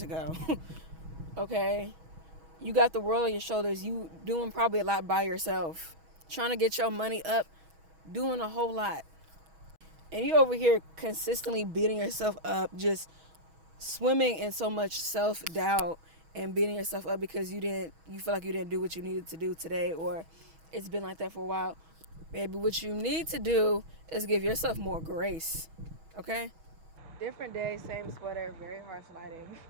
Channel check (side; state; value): left; late; 6.2 ms